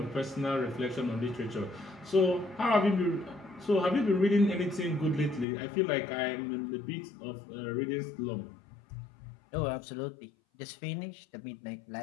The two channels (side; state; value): right; drops out; at 5.5 s